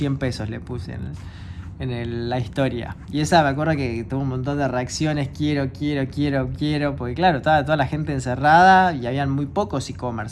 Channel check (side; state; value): both; identical; correlation 1.00